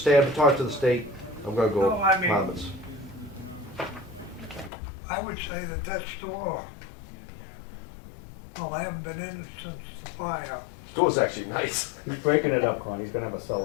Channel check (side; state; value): right; drops out; at 4.7 s